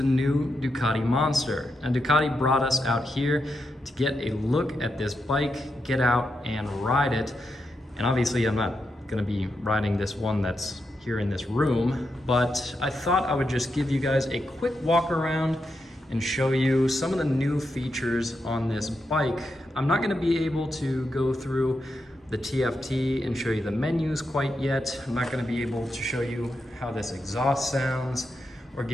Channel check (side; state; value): both; normal; correlation 0.85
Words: new Ducati Monster. And Ducati brought us out here to get a look at this bike, get out and ride it. And obviously I'm not gonna be riding this one that's here in this room, but I thought I would just give you guys a quick walk around and show you some of the new features on this bike. I'm not going to be able to go through the TFT and show you the menus quite yet. I'm not going to be able to show you how this exhaust sounds or